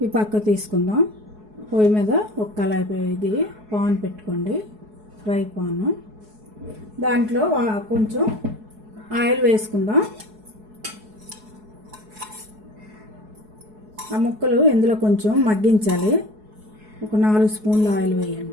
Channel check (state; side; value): late; left; 4.7 ms